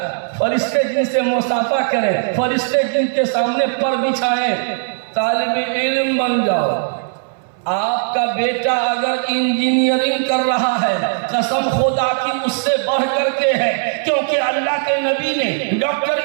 فرشتے جن سے مصافحہ کریں، فرشتے جن کے سامنے پر بچھائیں، طالب علم بن جاؤ۔ آپ کا بیٹا اگر انجینئرنگ کر رہا ہے، قسم خدا کی اس سے بڑھ کر کے ہے، کیونکہ اللہ کے نبی نے ڈاکٹر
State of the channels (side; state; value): left; silent; 62 dB below the other